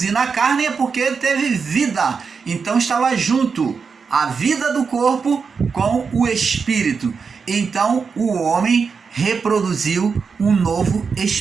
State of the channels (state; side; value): quieter; left; 5.5 dB